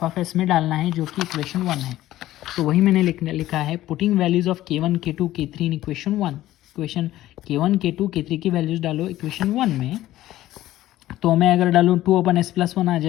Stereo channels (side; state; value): right; quieter; 14.8 dB